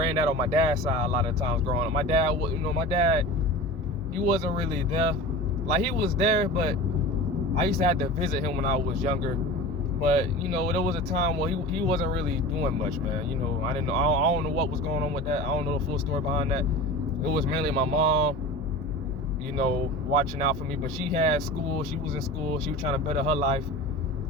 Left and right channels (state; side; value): normal; both; correlation 0.34